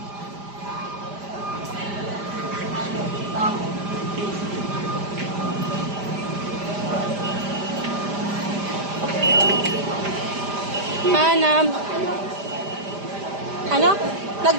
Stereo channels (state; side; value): late; left; 5.0 ms